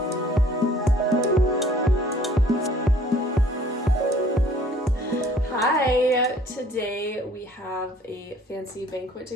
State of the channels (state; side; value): normal; both; correlation 0.55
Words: we have a fancy banquet